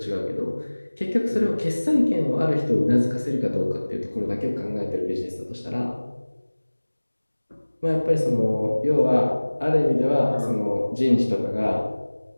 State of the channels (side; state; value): both; inverted; correlation -1.00